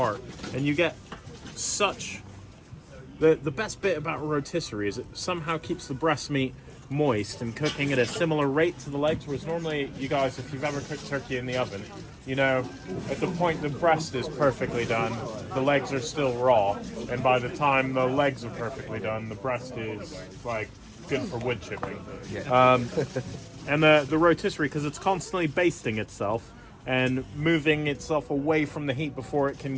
and you get such the best bit about a rotisserie is it somehow keeps the breast meat moist and cooking at a similar rate to the legs, whereas normally you guys, if you've ever cooked turkey in the oven, you know, at the point the breast is perfectly done, the legs are still raw, and by the time the legs are perfectly done, the breast is like good for wood chipping. Yeah. And the rotisserie, because it's constantly basting itself and moving itself away from the heat before it can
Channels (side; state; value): both; identical; correlation 1.00